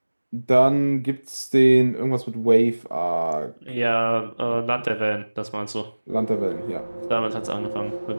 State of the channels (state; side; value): inverted; both; correlation -1.00